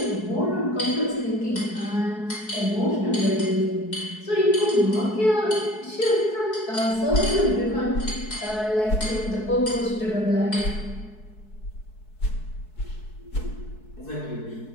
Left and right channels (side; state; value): right; late; 4.7 ms